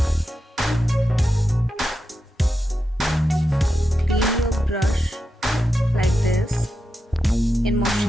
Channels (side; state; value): both; normal; correlation 0.88